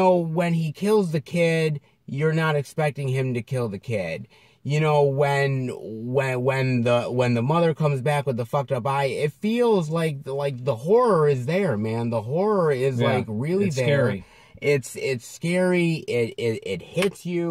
he kills the kid, you're not expecting him to kill the kid. When the mother comes back with the fucked up eye, it feels like the horror is there, man. The horror is like really it's there. Scary. It's scary. It hits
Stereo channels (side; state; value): both; identical; correlation 1.00